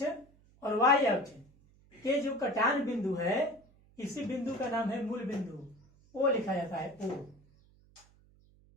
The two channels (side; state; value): right; noise; hum, 29 dB below the sound